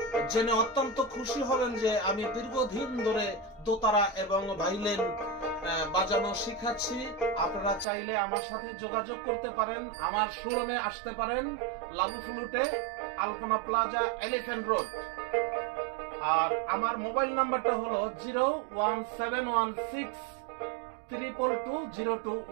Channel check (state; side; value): drops out; left; at 7.9 s